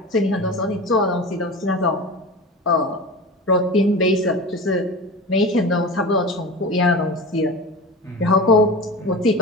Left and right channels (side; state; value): both; normal; correlation 0.30